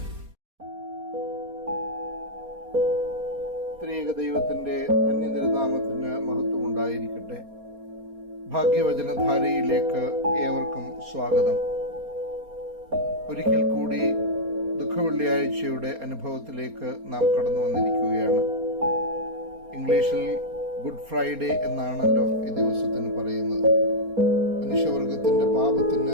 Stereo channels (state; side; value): late; left; 4.3 ms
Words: ത്രിയേക ദൈവത്തിന്റെ ധന്യതിരുനാമത്തിന് മഹത്വം ഉണ്ടായിരിക്കട്ടെ. ഭാഗ്യവചനധാരയിലേക്ക് ഏവർക്കും സ്വാഗതം. ഒരിക്കൽ കൂടി ദുഃഖവെള്ളിയാഴ്ചയുടെ അനുഭവത്തിലേക്ക് നാം കടന്നു വന്നിരിക്കുകയാണ്. ഇംഗ്ലീഷിൽ ഗുഡ് ഫ്രൈഡേ എന്നാണല്ലോ ഈ ദിവസത്തിന് പറയുന്നത്. മനുഷ്യവർഗത്തിന്റെ